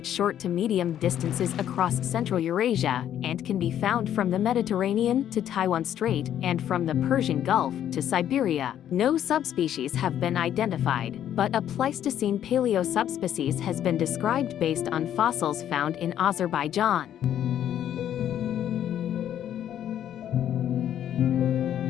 short to medium distances across Central Eurasia and can be found from the Mediterranean to Taiwan Strait and from the Persian Gulf to Siberia. No subspecies have been identified, but a Pleistocene paleosubspecies has been described based on fossils found in Azerbaijan.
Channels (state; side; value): quieter; right; 10.6 dB